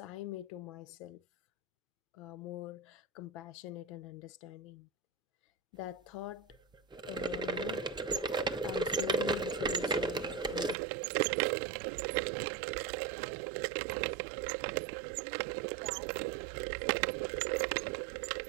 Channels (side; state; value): left; drops out; at 10.8 s